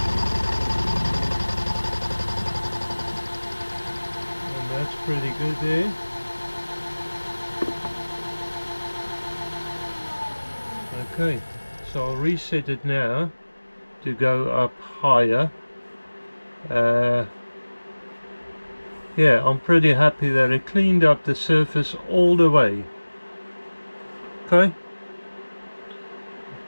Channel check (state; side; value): inverted; both; correlation -1.00